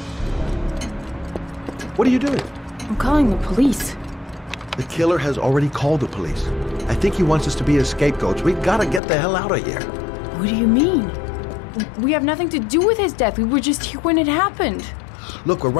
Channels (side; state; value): right; drops out; at 9.0 s